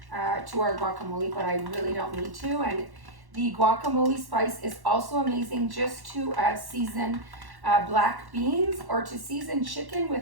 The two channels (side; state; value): left; late; 1.1 ms